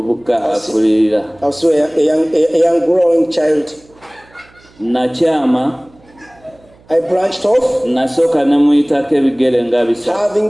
akulirira. I was a young growing child. Nakyama. I branched off. Nasooka ne muyitako ebigere nga bisatu. Having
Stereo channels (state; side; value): noise; right; hum, 29 dB below the sound